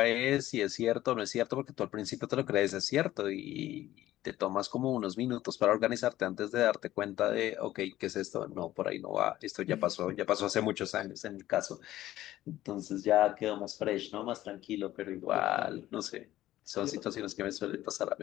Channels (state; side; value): quieter; right; 14.6 dB